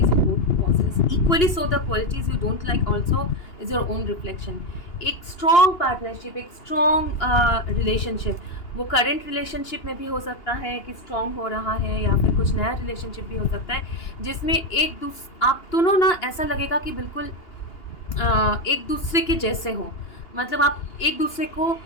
you both possess equally, so the qualities you don't like also is your own reflection। एक strong partnership, एक strong relationship, वो current relationship में भी हो सकता है कि strong हो रहा है, या फिर कुछ नया रिलेशनशिप भी हो सकता है जिसमें आप दोनों ना ऐसा लगेगा कि बिल्कुल एक दूसरे के जैसे हो, मतलब आप एक दूसरे को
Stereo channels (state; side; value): late; right; 2.8 ms